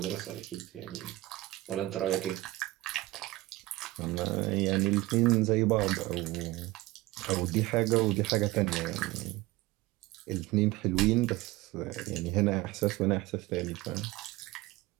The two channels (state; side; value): quieter; left; 18.9 dB